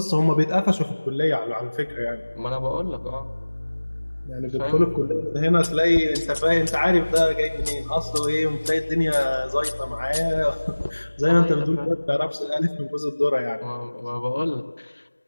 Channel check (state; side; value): inverted; both; correlation -1.00